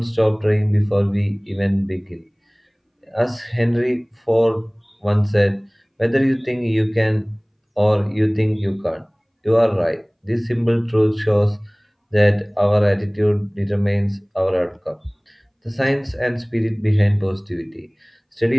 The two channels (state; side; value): identical; both; correlation 1.00